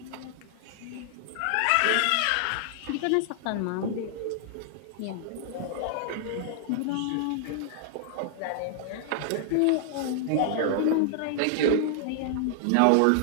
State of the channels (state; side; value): different; both; correlation 0.00